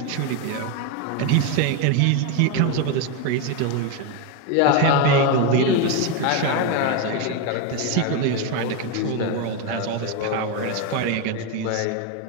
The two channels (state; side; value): different; both; correlation 0.02